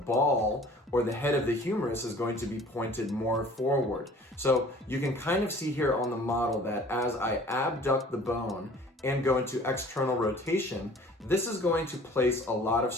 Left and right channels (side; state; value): both; normal; correlation 0.49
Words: or the head of the humerus is going to be pointed more forward. So you can kind of see here on the model that as I abduct the bone and go into external rotation, this is going to place a lot of